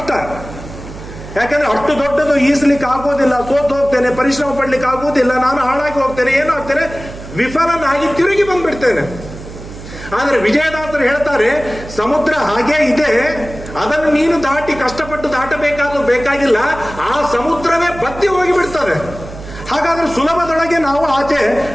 ಯಾಕಂದ್ರೆ ಅಷ್ಟು ದೊಡ್ಡದು ಈಸಲಿಕ್ಕೆ ಆಗೋದಿಲ್ಲ, ಸೋತು ಹೋಗ್ತೇನೆ, ಪರಿಶ್ರಮ ಪಡ್ಲಿಕ್ಕೆ ಆಗೋದಿಲ್ಲ, ನಾನು ಹಾಳಾಗಿ ಹೋಗ್ತೇನೆ, ಏನಾಗ್ತೇನೆ, ವಿಫಲನಾಗಿ ತಿರುಗಿ ಬಂದ್ಬಿಡ್ತೇನೆ. ಆದ್ರೆ ವಿಜಯದಾಸರು ಹೇಳ್ತಾರೆ, ಸಮುದ್ರ ಹಾಗೇ ಇದೆ, ಅದನ್ನು ನೀನು ದಾಟಿ ಕಷ್ಟಪಟ್ಟು ಬೇಕಾಗಿಲ್ಲ, ಆ ಸಮುದ್ರವೇ ಬತ್ತಿ ಹೋಗಿಬಿಡ್ತದೆ. ಹಾಗಾದ್ರೆ ಸುಲಭದೊಳಗೆ ನಾವು ಆಚೆ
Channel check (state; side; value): noise; right; hum, 13 dB below the sound